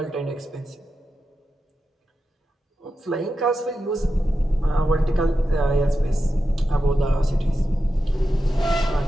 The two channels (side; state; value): both; normal; correlation 0.90